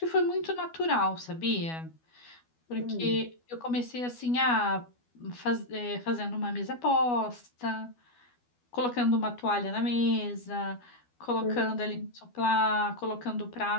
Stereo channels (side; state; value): right; late; 12 ms